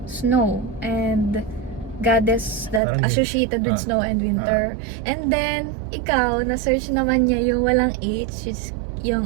snow. And goddess that Parang- associated with snow and winter. And then, ikaw, na-search naman niya yung walang H, which is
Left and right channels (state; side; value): drops out; left; at 2.8 s